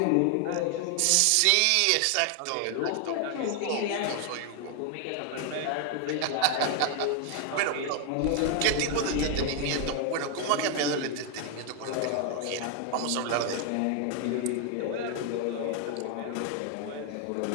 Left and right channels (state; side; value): different; both; correlation 0.00